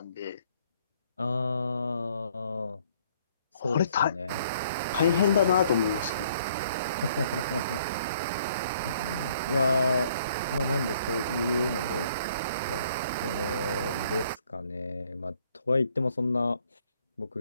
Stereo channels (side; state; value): both; inverted; correlation -0.63